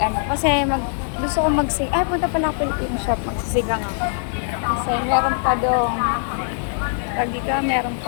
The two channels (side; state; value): right; silent; digital silence